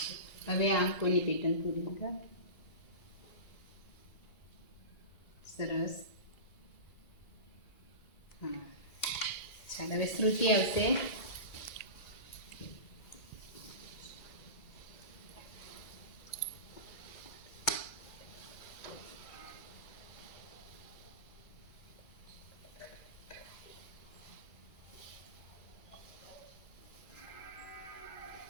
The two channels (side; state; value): right; late; 2.0 ms